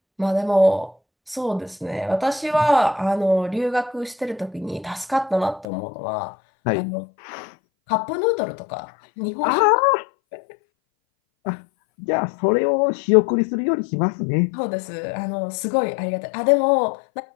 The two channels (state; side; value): drops out; right; at 5.7 s